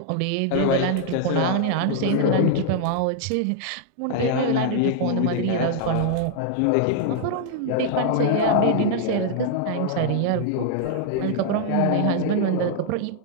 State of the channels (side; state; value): both; different; correlation 0.00